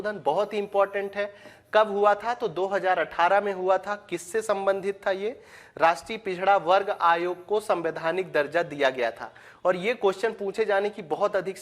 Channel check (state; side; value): identical; both; correlation 1.00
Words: बहुत ही इंपॉर्टेंट है। कब हुआ था? तो 2018 में हुआ था। किससे संबंधित था ये? राष्ट्रीय पिछड़ा वर्ग आयोग को संवैधानिक दर्जा दिया गया था। और ये क्वेश्चन पूछे जाने की बहुत अधिक